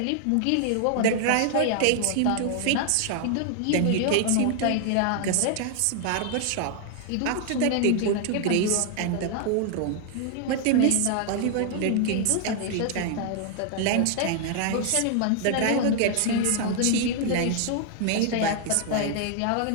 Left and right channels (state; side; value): different; both; correlation 0.00